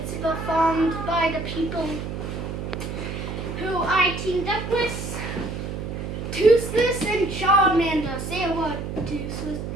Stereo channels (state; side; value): noise; right; hum, 6 dB below the sound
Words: performed by the people who I teamed up with. Toothless and Charmander. Say a word, Toothless.